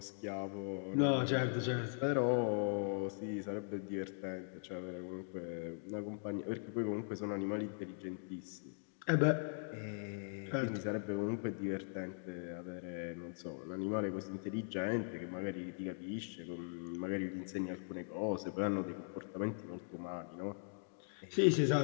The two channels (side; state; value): right; silent; digital silence